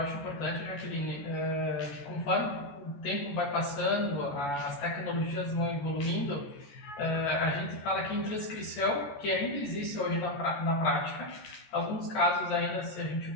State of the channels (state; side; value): late; right; 14 ms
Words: importante, Jaqueline, conforme o tempo vai passando, as tecnologias vão evoluindo, a gente fala que em transcrição, que ainda existe hoje na prática, alguns casos ainda, se a gente